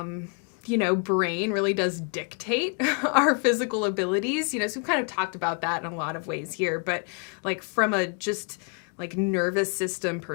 brain really does dictate our physical abilities. So we've kind of talked about that in a lot of ways here, but like from a just like nervous system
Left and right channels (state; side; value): quieter; right; 37.6 dB